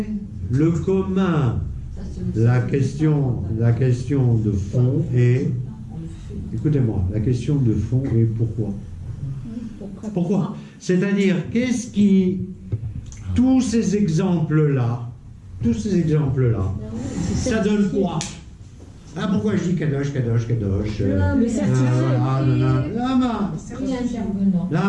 le commun? La question de fond est, écoutez-moi, la question de fond est pourquoi? Pourquoi? C'est-à-dire, qu'est-ce qui, tous ces exemples-là, ça donne quoi? Ah, pourquoi je dis Kadosh, Kadosh, Kadosh? Le certificat. Lama.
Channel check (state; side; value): identical; both; correlation 1.00